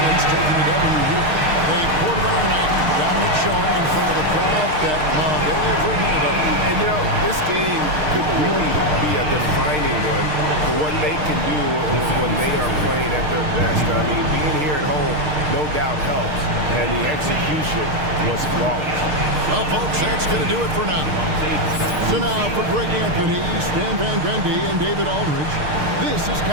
taking the W here. They quarterback tonight, dominant showing in front of a crowd that loved every minute of it. And, you know, this game could really be a defining one for what they can do when they are playing at their best. I mean, being here at home no doubt helps, and the execution was flawless. Well, folks, that's going to do it for now. So now, for Greg Anthony, Stan Van Gundy, and David Aldridge, this is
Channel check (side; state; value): left; late; 6.6 ms